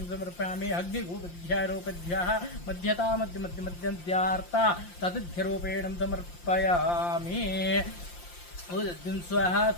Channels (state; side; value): late; right; 5.7 ms